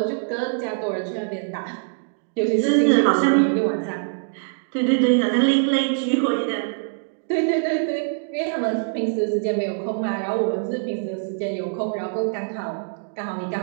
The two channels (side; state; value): left; silent; digital silence